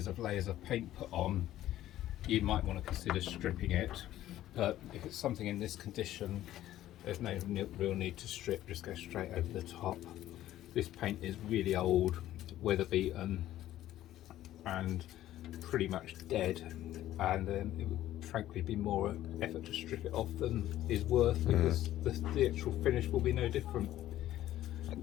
of layers of paint put on, you might want to consider stripping it, but if it's something in this condition, there's no real need to strip, just go straight over the top. This paint is really old, weather beaten and pretty much dead, and it would frankly be more effort to strip it off than is worth, because the actual finish will be no different.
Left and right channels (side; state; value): right; quieter; 13.6 dB